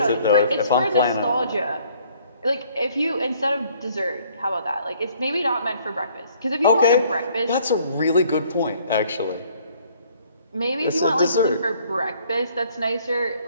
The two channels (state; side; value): inverted; both; correlation -0.61